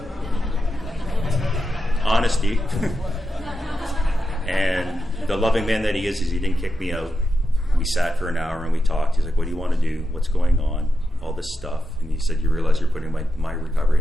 Honesty. And the loving man that he is he didn't kick me out. We sat for an hour and we talked. He's like, what do you want to do? What's going on? All this stuff. And he said, you realize you're putting my recovery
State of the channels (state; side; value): normal; both; correlation 0.88